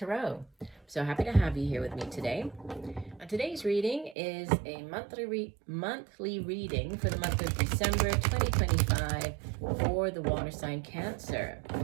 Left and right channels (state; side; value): drops out; left; at 4.2 s